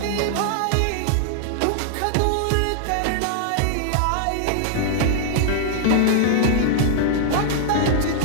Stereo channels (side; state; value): both; different; correlation -0.01